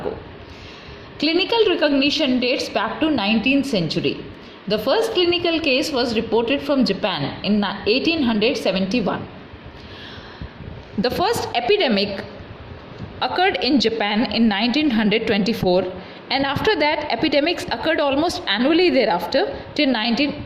Clinical recognition dates back to 19th century. The first clinical case was reported from Japan in 1871. The first epidemic occurred in Japan in 1924, and after that epidemics occurred almost annually thereafter till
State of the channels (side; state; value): both; identical; correlation 1.00